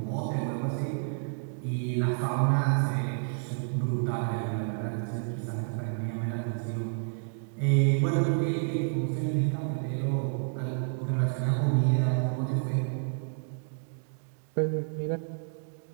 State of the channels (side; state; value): left; silent; digital silence